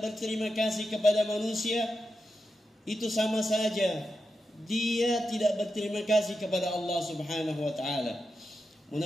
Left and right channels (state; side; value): normal; both; correlation 0.88